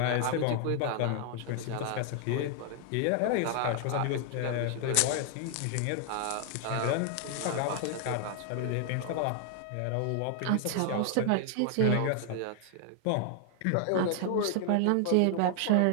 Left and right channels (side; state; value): both; different; correlation 0.00